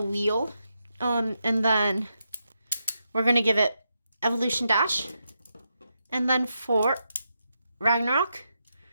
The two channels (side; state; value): both; inverted; correlation -0.84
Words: wheel. And then we're going to give it Evolution Dash. And then for Ragnaruk,